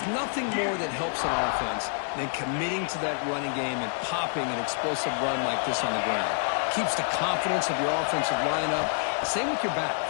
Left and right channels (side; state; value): right; silent; 60 dB below the other